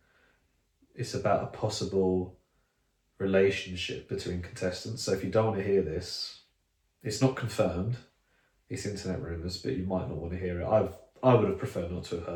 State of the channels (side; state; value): both; identical; correlation 1.00